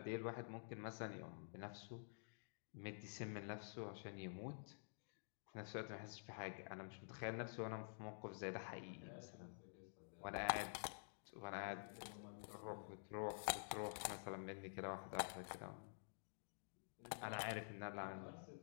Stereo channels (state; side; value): silent; right; digital silence